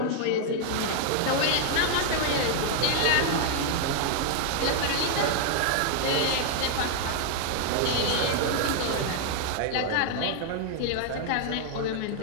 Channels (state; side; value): different; both; correlation 0.00